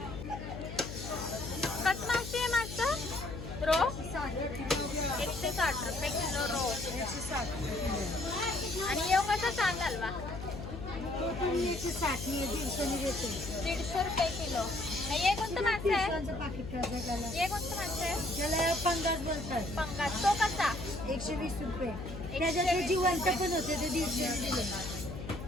कसं मावशी आहे मागचं? रो 160 रुपये किलो रो. 160. आणि येऊ कसा चांद हलवा? तो तुम्ही 160 150 देते. 150 रुपये किलो. हे कोणतं मासे आहे? पिशवांचं पाकिट करायचं त्याला. हे कोणतं मासे आहे? त्याला पंगास बोलतात. पंगास. तो कसा? 120 रुपये. त्याच्यात ते जिवंत पण होते ते 150 दिले.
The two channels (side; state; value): left; noise; hum, 9 dB below the sound